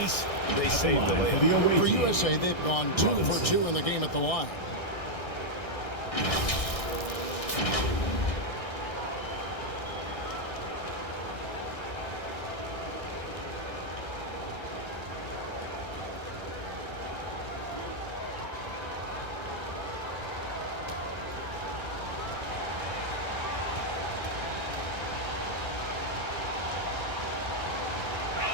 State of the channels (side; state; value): right; late; 1.6 ms